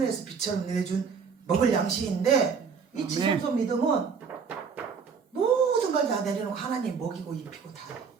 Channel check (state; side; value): quieter; left; 5.9 dB